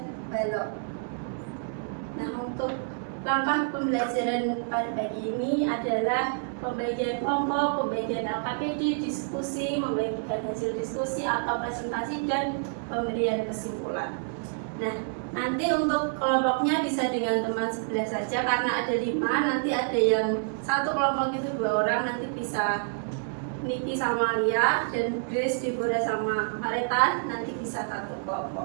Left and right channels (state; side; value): silent; left; 59 dB below the other